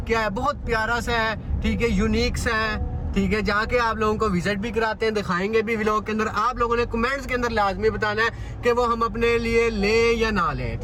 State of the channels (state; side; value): identical; both; correlation 1.00